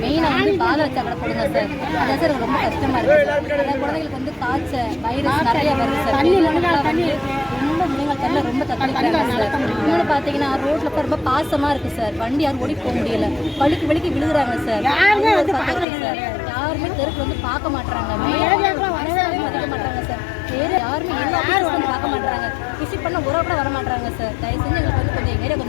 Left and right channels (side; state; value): right; drops out; at 15.9 s